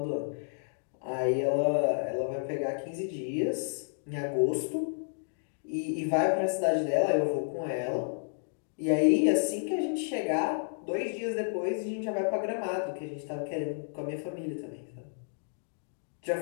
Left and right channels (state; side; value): silent; right; digital silence